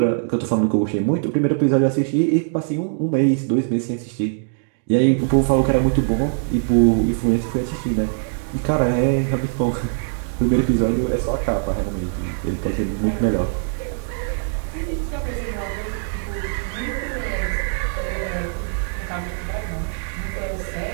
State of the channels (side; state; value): left; silent; digital silence